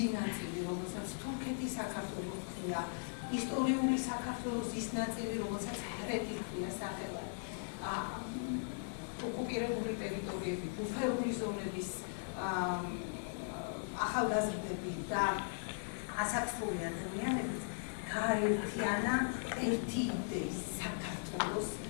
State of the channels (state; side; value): silent; right; digital silence